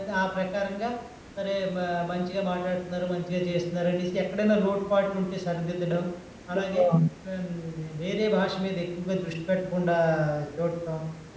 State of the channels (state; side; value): identical; both; correlation 1.00